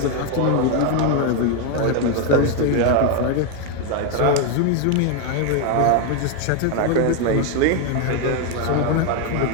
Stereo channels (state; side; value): different; both; correlation 0.01